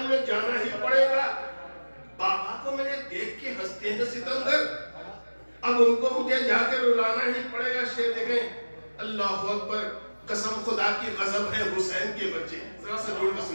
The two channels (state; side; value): inverted; both; correlation -1.00